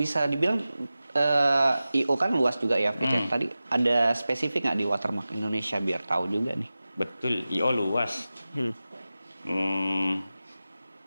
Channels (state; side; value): inverted; both; correlation -0.95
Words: dibilang IO kan luas juga ya Fit. Ya. Tadi ada spesifik nggak di Watermark Indonesia biar tahu juga nih. betul. IO luas.